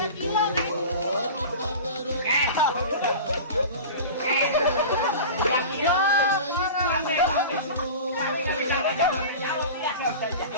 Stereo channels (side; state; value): both; inverted; correlation -0.33